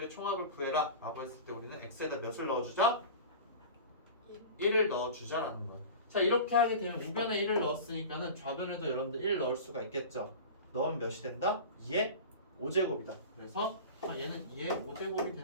총합을 구해라 라고 했을 때 우리는 X에다 몇을 넣어주자? 1을 넣어주자라는 거예요. 자 이렇게 하게 되면 우변에 1을 넣었으니까는 좌변에도 여러분들 1 넣을 수가 있겠죠. 넣으면 몇이 된다? 2의 5제곱이다. 그래서 얘는 2의 5제곱이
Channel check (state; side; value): inverted; both; correlation -0.34